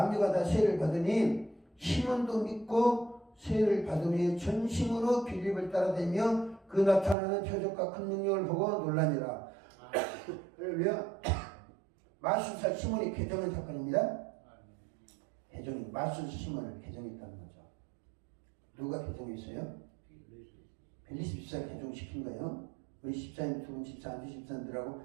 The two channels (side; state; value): left; drops out; at 7.2 s